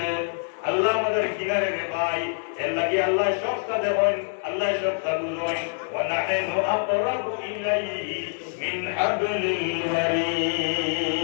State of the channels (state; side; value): silent; right; digital silence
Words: আল্লাহ আমাদের কিনারে রে ভাই এর লাগি আল্লাহ সবটা দেখেন আল্লাহ সবটা বুঝেন ওয়া নাহনু আকরাবু ইলাইহি মিন হাবলিল